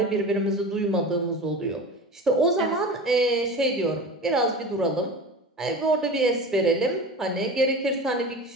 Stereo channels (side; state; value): both; normal; correlation 0.32